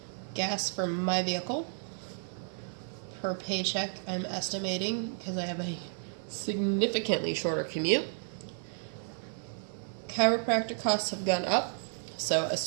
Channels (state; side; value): silent; left; 56 dB below the other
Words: Gas for my vehicle per paycheck, I'm estimating, because I have a significantly shorter commute. Chiropractic costs have gone up, so